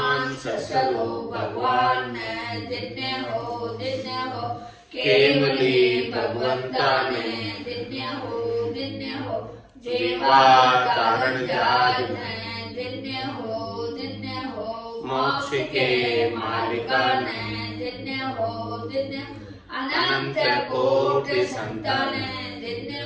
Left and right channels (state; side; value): identical; both; correlation 1.00